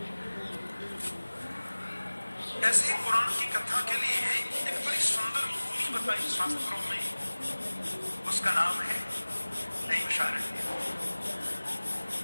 ऐसे ही पुराण की कथा के लिए एक बड़ी सुंदर भूमि बताई शास्त्रों में, उसका नाम है नैमिषारण्य।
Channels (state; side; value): inverted; both; correlation -1.00